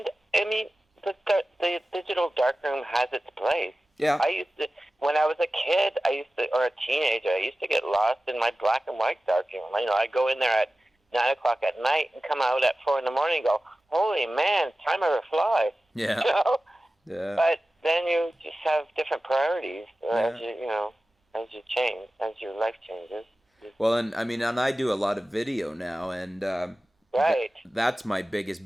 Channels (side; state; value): both; normal; correlation 0.95